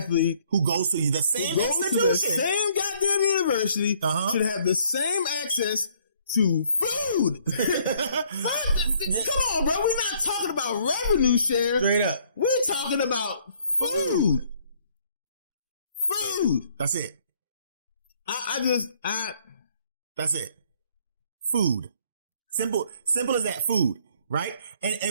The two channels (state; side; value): inverted; both; correlation -0.63